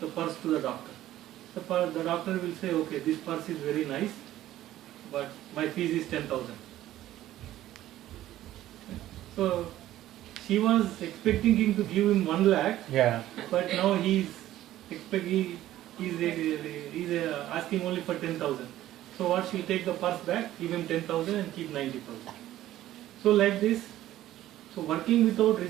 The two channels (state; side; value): quieter; left; 13.9 dB